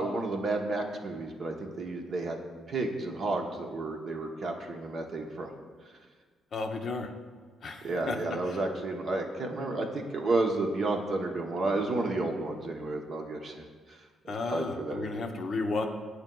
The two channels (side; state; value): both; normal; correlation 0.78